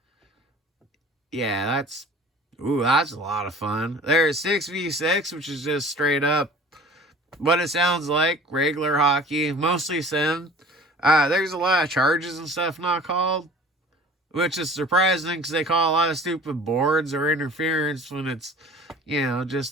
Yeah, that's a lot of fun. There's 6v6, which is just straight up what it sounds like, regular hockey, mostly sim. There's a lot of charges and stuff not called, which is surprising because they call a lot of stupid boards or interference when it's,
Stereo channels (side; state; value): both; normal; correlation 0.45